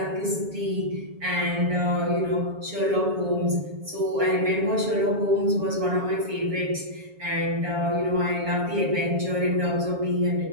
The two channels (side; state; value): left; late; 7.2 ms